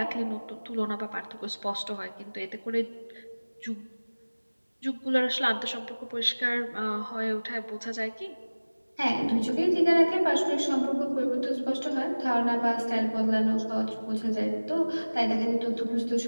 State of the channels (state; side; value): inverted; both; correlation -1.00